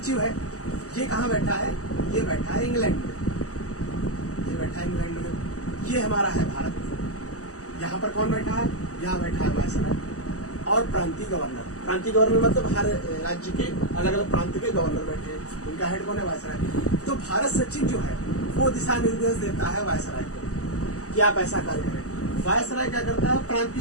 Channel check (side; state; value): right; late; 0.66 ms